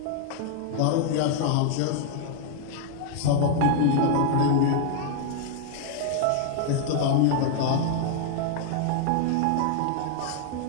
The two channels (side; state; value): both; different; correlation 0.00